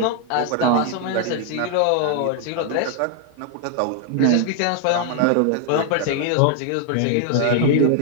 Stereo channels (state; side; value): different; both; correlation 0.00